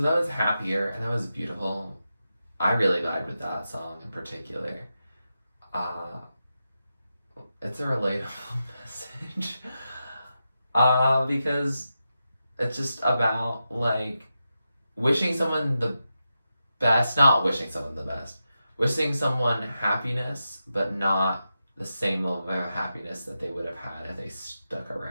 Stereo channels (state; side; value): inverted; both; correlation -0.89